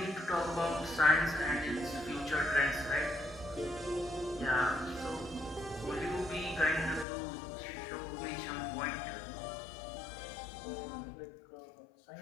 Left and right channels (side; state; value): right; drops out; at 7.1 s